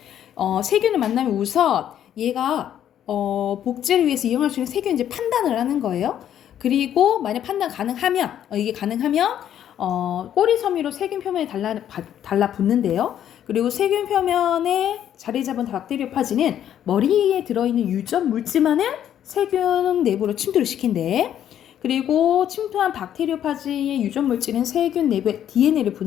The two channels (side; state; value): right; quieter; 10.4 dB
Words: 세균을 만나면 우선 얘가 복제를 위해서 이용할 수 있는 세균인지 판단을 하는 거예요. 그리고 만약 판단 가능하면 이게 가능하면 꼬리 섬유로 세균 표면에 달라붙는데요. 그리고 세균 표면에 자리 잡은 박테리오파지는 머리에 들어있는 유전 물질만을 세균 내부로 침투를 시킨대. 그리고 침투한 박테리오파지의 유전 물질은 세균 내부의 DNA를